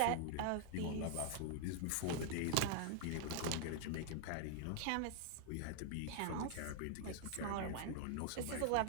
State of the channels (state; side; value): different; both; correlation -0.01